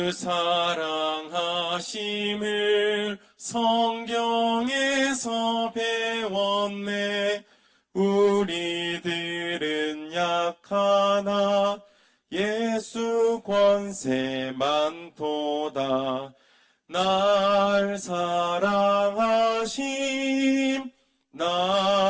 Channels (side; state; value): both; identical; correlation 1.00